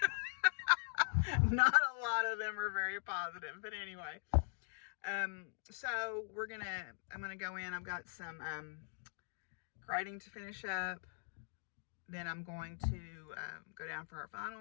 Not a lot of them are very positive. But anyway, so I'm gonna go in. I've got some grading to finish up. Then I'm going to go down for our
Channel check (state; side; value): silent; right; digital silence